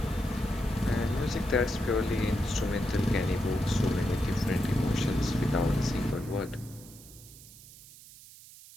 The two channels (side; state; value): right; noise; hiss, 19 dB below the sound